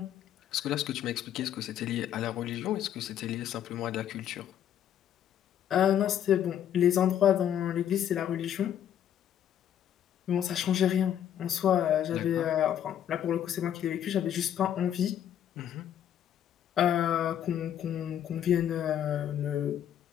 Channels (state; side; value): quieter; right; 10.1 dB